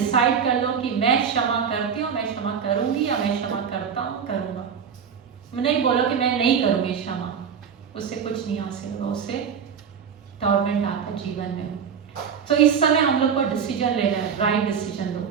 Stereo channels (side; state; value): left; quieter; 7.1 dB